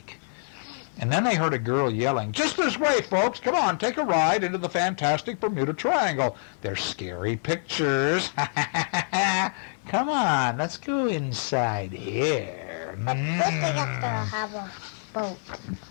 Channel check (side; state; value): right; silent; digital silence